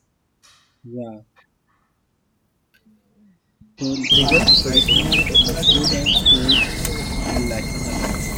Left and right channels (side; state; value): both; identical; correlation 1.00